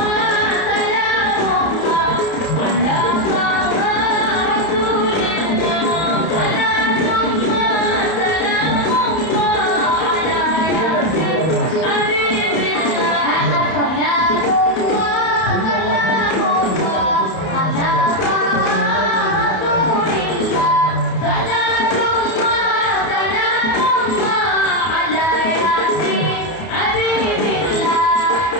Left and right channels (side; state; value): right; late; 31 ms